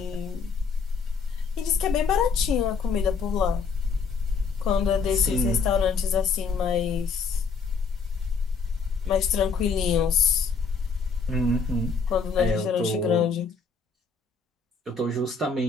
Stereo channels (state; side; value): quieter; right; 5.2 dB